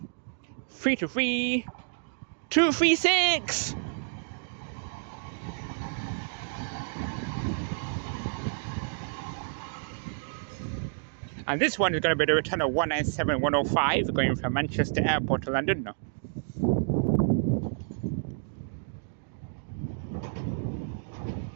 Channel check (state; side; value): silent; left; digital silence